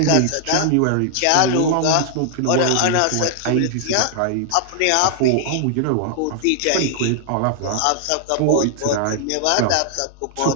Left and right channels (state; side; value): different; both; correlation 0.00